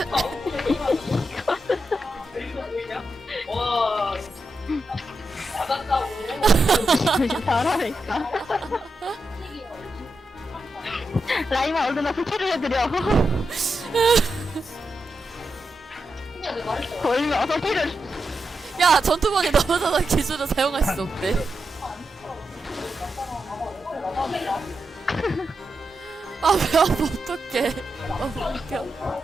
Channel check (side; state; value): both; normal; correlation 0.87